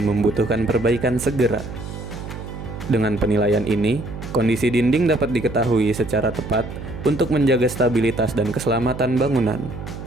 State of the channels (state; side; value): noise; right; hum, 10 dB below the sound